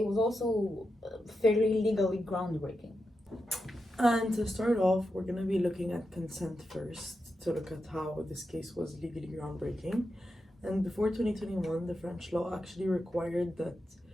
was also fairly legally groundbreaking. And to start off, we're going to be looking at consent first, to look at how this case was legally groundbreaking. And before 2021, the French law actually required that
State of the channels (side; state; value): both; normal; correlation 0.88